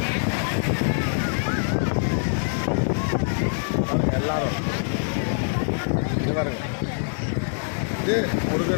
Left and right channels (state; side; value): silent; right; digital silence